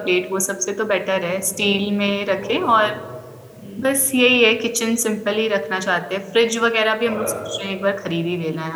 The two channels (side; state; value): both; identical; correlation 1.00